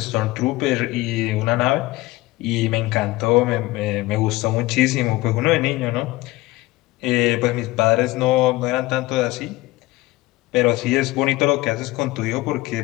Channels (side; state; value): right; quieter; 19.6 dB